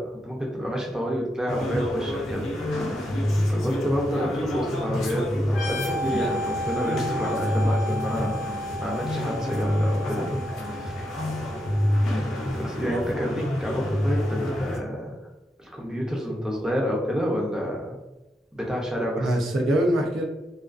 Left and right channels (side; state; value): both; normal; correlation 0.83